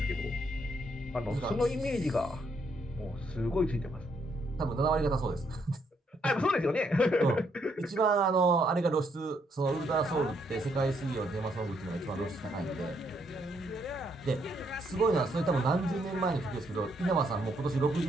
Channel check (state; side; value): normal; both; correlation 0.73